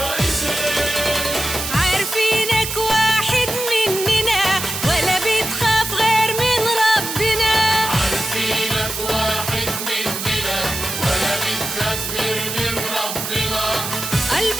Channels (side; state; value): right; noise; hiss, 5 dB below the sound